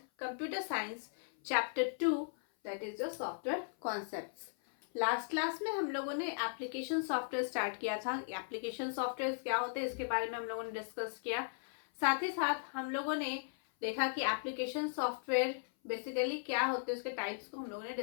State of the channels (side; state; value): right; silent; 53 dB below the other